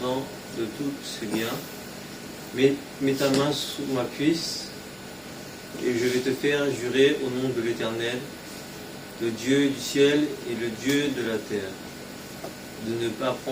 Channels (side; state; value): both; identical; correlation 1.00